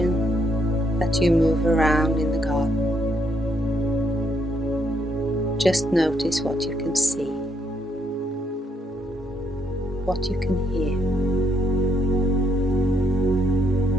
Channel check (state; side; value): normal; both; correlation 0.74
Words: that you move around in the garden. Just notice what you can see, what you can hear,